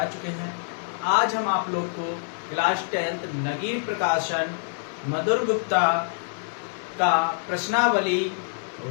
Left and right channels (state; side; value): silent; right; 55 dB below the other